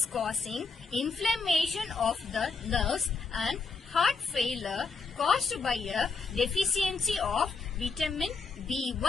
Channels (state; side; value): quieter; right; 4.5 dB